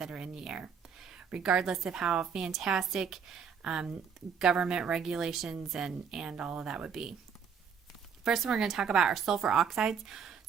are in the air, regardless of how fantastic government regulations and all of that would be. First, we're going to talk about our sulfur oxides.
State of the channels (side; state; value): left; quieter; 6.9 dB